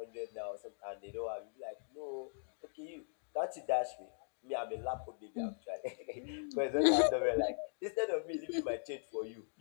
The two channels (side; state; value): right; silent; digital silence